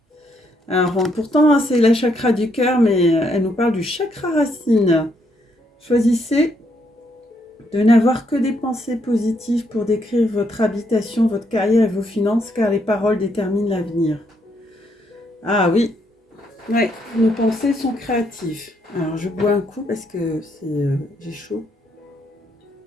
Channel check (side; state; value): both; normal; correlation 0.74